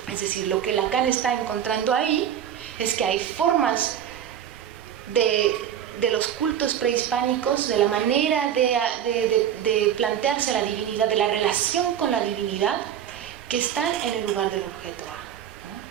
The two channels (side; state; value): left; quieter; 9.8 dB